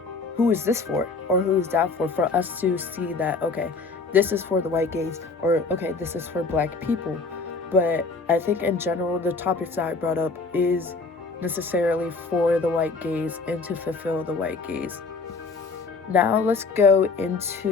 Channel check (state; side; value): quieter; right; 4.1 dB